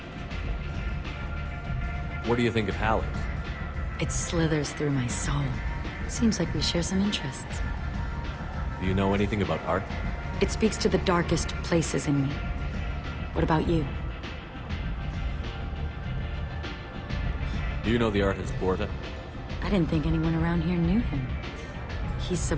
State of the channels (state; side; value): identical; both; correlation 1.00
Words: What do you think of Halleck? It slithers through my soul. Seems like we share some interests. Do you know anything about art? It speaks to the darkest places in me. What about you? Do you know the artist Porta? I didn't think anyone around here knew him. He's